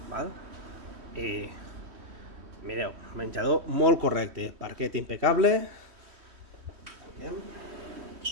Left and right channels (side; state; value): left; late; 3.1 ms